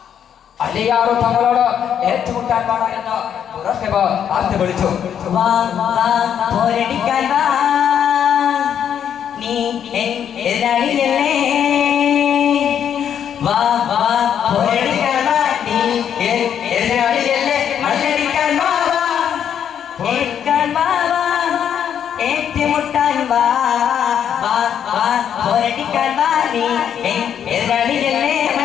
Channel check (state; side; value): quieter; right; 8.9 dB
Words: അലിയാർ തങ്ങളോട് ഏറ്റുമുട്ടാൻ പാടാ എന്ന് മുറഹിബ് ആർത്തി വിളിച്ചു. എതിരാളിയല്ലേ വാ വാ പോരടിക്കാൻ വാ നീ എതിരാളിയല്ലേ മല്ലടിക്കാൻ വാ വാ ഏൽക്കാൻ വാ വാ ഏറ്റുമുട്ടാൻ വാ വാ വാ പോരടിക്കാൻ വാ നീ എതിരാളിയല്ലേ